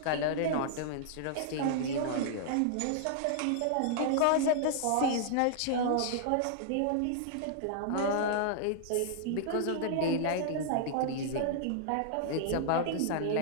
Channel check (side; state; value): both; different; correlation -0.01